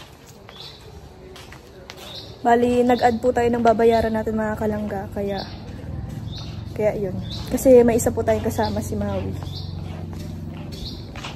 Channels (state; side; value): identical; both; correlation 1.00